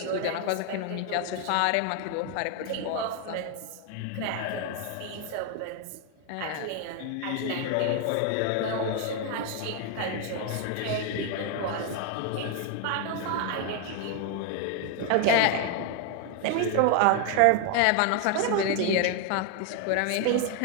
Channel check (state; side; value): different; both; correlation 0.01